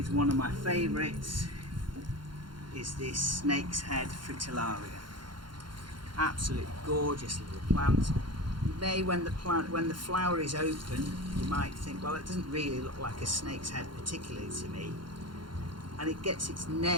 one of my favourites is this snake's head fritillaria. Absolutely gorgeous little plant. You may, when the flower is open, you might think, well, it doesn't really look like a snake's head particularly to me. And it gets its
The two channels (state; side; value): late; left; 0.72 ms